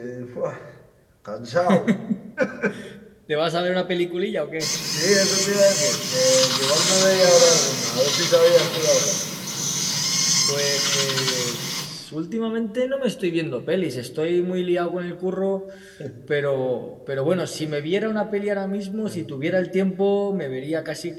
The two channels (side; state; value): both; identical; correlation 1.00